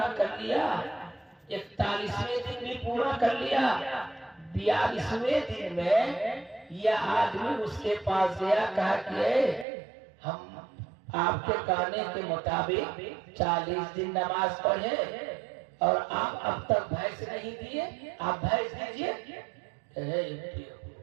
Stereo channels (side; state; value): left; drops out; at 9.7 s